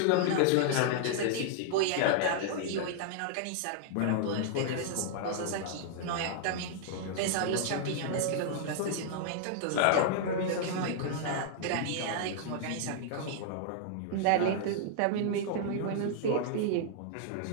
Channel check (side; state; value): both; different; correlation -0.01